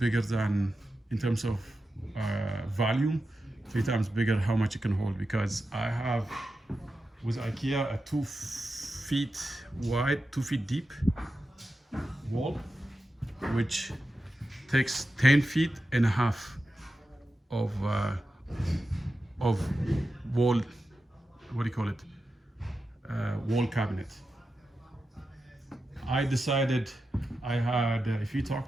than, in terms of volume, 3 times bigger how much it can hold, because I have, with IKEA, a 2 feet wide, 2 feet deep wall, which takes 10 feet and a half of wall, what do you call it? Wall cabinet. I decided if you talk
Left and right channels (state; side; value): normal; both; correlation 0.91